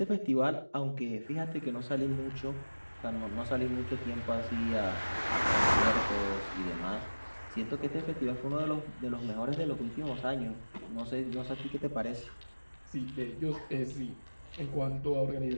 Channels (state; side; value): inverted; both; correlation -1.00